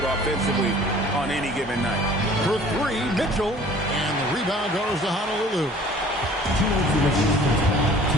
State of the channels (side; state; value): both; normal; correlation 0.50